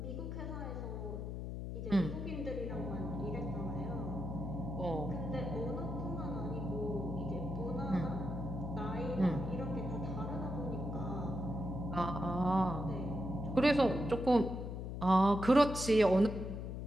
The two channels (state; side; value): noise; left; hum, 5 dB below the sound